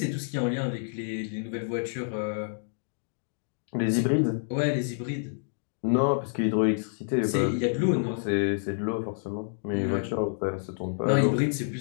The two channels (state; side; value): silent; right; digital silence